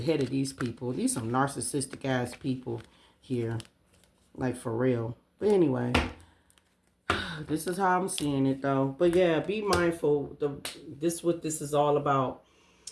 of these people. These some narcissistic ass people here. Like for real. But anyway. This is how I'm seeing it though. But yeah, be mindful. This is what this is all about.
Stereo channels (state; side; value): identical; both; correlation 1.00